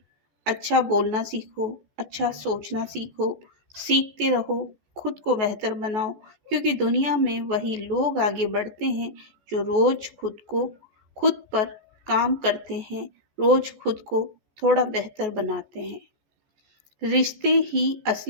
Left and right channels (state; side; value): late; left; 14 ms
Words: अच्छा बोलना सीखो, अच्छा सोचना सीखो, सीखते रहो, खुद को बेहतर बनाओ। क्योंकि दुनिया में वही लोग आगे बढ़ते हैं जो रोज खुद पर काम करते हैं, रोज खुद को थोड़ा बेहतर बनाते हैं। रिश्ते ही